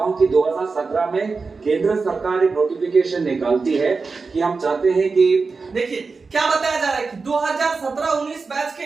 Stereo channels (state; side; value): quieter; left; 4.4 dB